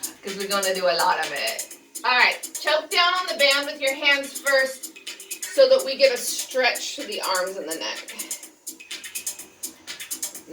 because we're going to do a lot of it. All right, choke down on the band with your hands first so that we get a stretch to the arms and the neck.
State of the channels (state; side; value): identical; both; correlation 1.00